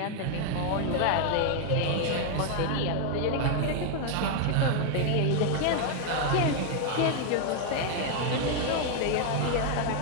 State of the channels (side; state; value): both; different; correlation 0.00